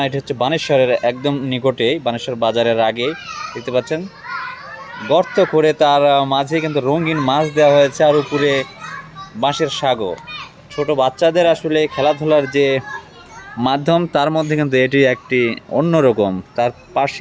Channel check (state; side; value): identical; both; correlation 1.00